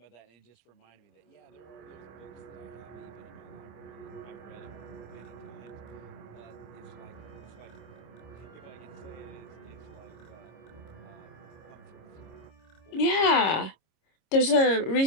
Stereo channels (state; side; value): late; right; 25 ms